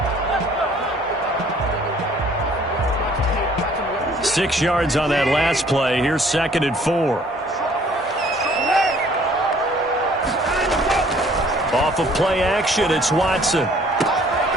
Six yards on that last play. Here's 2nd and 4. Off of play action, it's Watson.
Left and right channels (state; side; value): normal; both; correlation 0.57